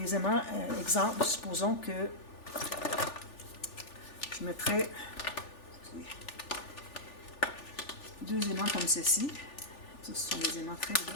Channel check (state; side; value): late; right; 3.4 ms